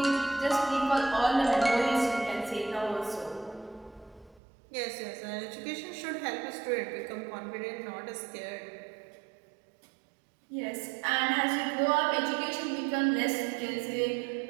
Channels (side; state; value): left; drops out; at 4.4 s